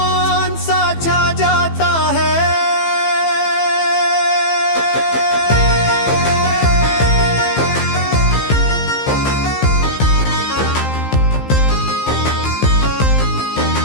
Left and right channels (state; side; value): late; right; 15 ms